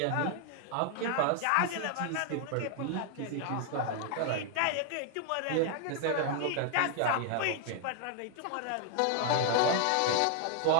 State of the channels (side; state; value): both; different; correlation 0.00